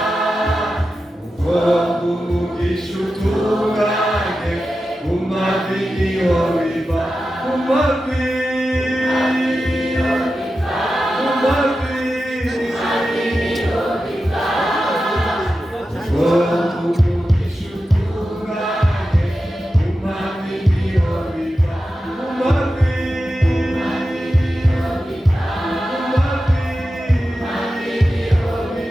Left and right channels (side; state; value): both; normal; correlation 0.92